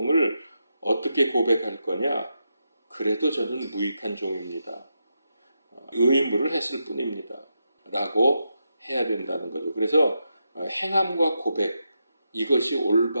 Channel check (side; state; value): both; inverted; correlation -0.85